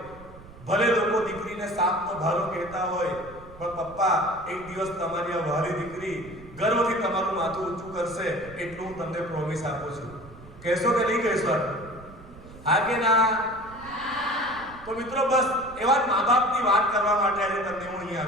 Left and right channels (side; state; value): right; noise; rumble, 19 dB below the sound